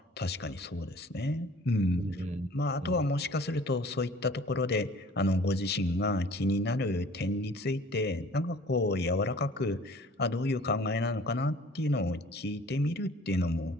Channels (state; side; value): normal; both; correlation 0.50